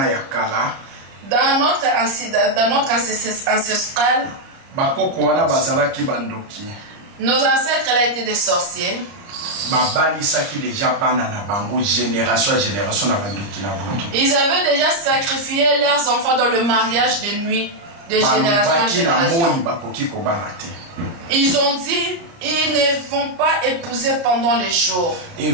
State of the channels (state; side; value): late; left; 29 ms